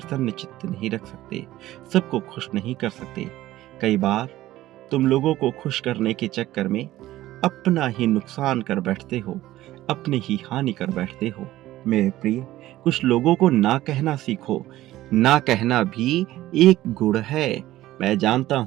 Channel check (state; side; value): quieter; left; 15.3 dB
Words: चित्त नहीं रख सकते, सबको खुश नहीं कर सकते। कई बार तुम लोगों को खुश करने के चक्कर में अपना ही नुकसान कर बैठते हो, अपनी ही हानि कर बैठते हो। मेरे प्रिय, कुछ लोगों को ना कहना सीखो। ना कहना भी एक गुण है। मैं जानता